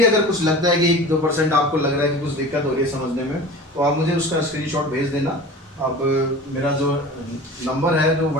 अगर कुछ लगता है कि 1-2% आपको लग रहा है कि कुछ दिक्कत हो रही है समझने में, तो आप मुझे उसका स्क्रीनशॉट भेज देना। अब मेरा जो नंबर है, जो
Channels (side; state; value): both; normal; correlation 0.38